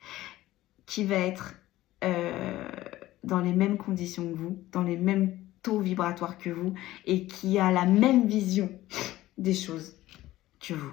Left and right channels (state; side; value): quieter; right; 15.9 dB